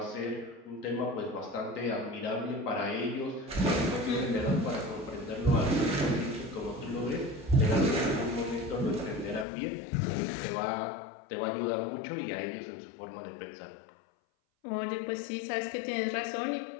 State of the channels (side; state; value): right; drops out; at 9.5 s